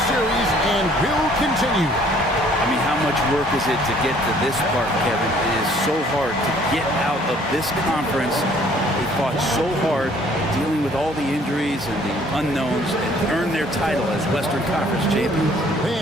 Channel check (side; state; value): both; normal; correlation 0.59